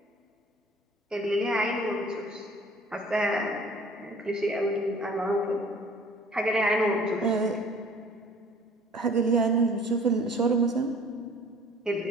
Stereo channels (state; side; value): normal; both; correlation 0.51